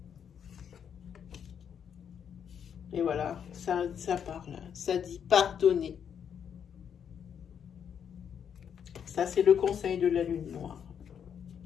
Et voilà, ça parle, ça dit pardonner. Ça, c'est le conseil de la lune noire.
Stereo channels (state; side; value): quieter; right; 8.0 dB